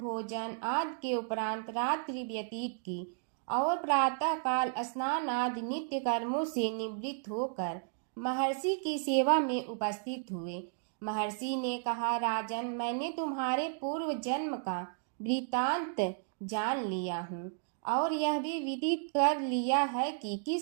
आदि के उपरांत रात्रि व्यतीत की और प्रातः काल स्नान आदि नित्य कर्मों से निवृत्त होकर महर्षि की सेवा में उपस्थित हुए। महर्षि ने कहा, राजन, मैंने तुम्हारे पूर्व जन्म का वृतांत जान लिया हूँ और यह भी विदित कर लिया है कि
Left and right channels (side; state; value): left; silent; digital silence